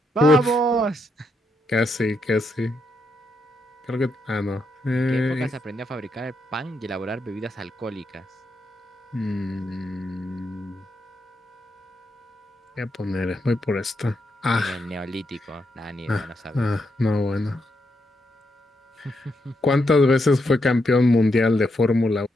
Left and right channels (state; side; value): normal; both; correlation 0.81